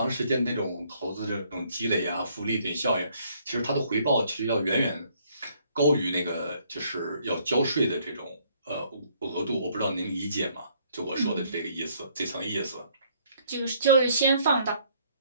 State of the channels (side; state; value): both; inverted; correlation -0.65